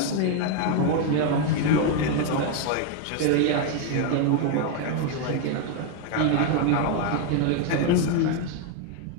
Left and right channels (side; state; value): both; different; correlation 0.01